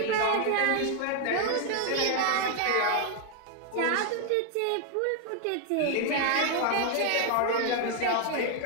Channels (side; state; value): both; different; correlation 0.00